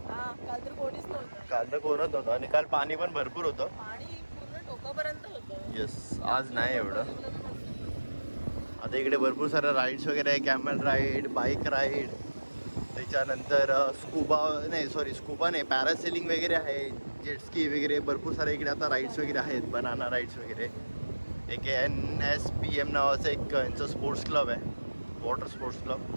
तर कोणीच नव्हतं काल तर कोणच नव्हतं आणि काल पाणी पण भरपूर होतं पाणी पूर्ण टोकापर्यंत होतं येस आज नाही एवढं आता इकडे भरपूर साऱ्या राईड्स वगैरे आहे कॅमल राईड बाईक राईड त्याच्यानंतर स्कुबा नाही पॅरासेलिंग वगैरे आहे जेटस्की वगैरे भरपूर सारे इकडे आता राईड्स वगैरे आहेत बनाना राईड्स वगैरे एक NSPM नावाचं एक यांचं स्पोर्ट्स क्लब आहे वॉटर स्पोर्ट्स क्लब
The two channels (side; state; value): both; inverted; correlation -1.00